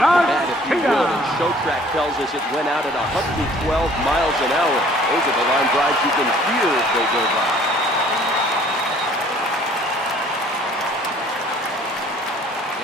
the bat, if you Garcia. would, and Showtrack tells us it went out at 112 miles an hour. Those are the line drives you can hear as they go by.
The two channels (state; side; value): normal; both; correlation 0.55